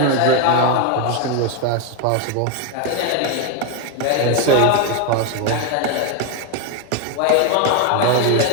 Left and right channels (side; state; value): both; different; correlation 0.01